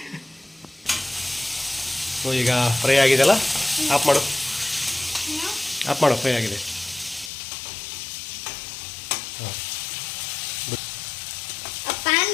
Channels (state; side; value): drops out; right; at 7.3 s